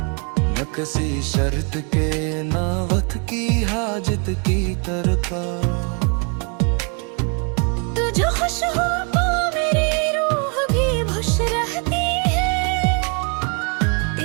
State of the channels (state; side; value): quieter; left; 36.2 dB